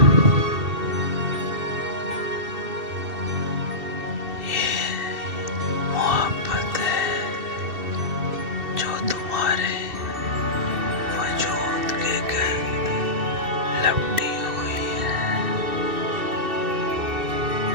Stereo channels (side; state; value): left; late; 2.7 ms